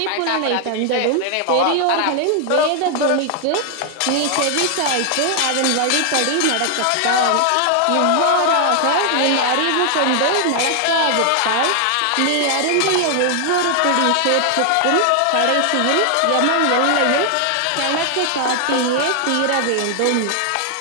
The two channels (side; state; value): both; different; correlation 0.00